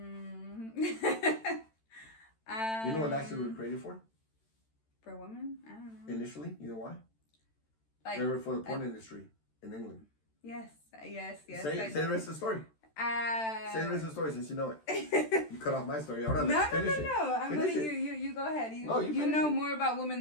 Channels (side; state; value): right; late; 13 ms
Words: what lashes were created for? For a woman? I don't know. Initially, you know why? Like, they were for the porn industry in England. Yes. Say the rest of the story. Say the rest of the story since you know it. You cut off my story. Hold on, let's finish it. No. I'm letting you go ahead. You know more about women